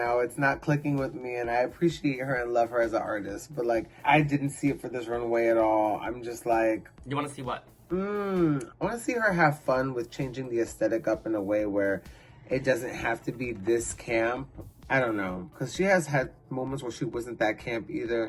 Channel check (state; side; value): identical; both; correlation 1.00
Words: It's not clicking with me, and I appreciate her and love her as an artist. But, I didn't see it for this runway at all. I'm just like... You want to see what? I want to see her have fun with changing the aesthetic up in a way where it doesn't have to be this camp. I don't know, because she has had moments where she wasn't that camp